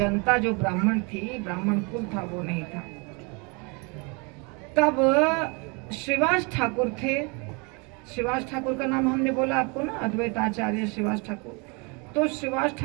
जो ब्राह्मण थी, ब्राह्मण कुल था, वो नहीं था। तब श्रीवास ठाकुर थे। श्रीवास ठाकुर का नाम हमने बोला आपको ना, अद्वैत आचार्य श्रीवास ठाकुर। तो श्रीवास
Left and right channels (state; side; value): quieter; left; 31.4 dB